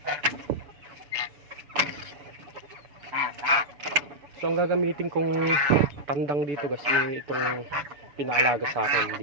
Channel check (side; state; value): left; late; 6.9 ms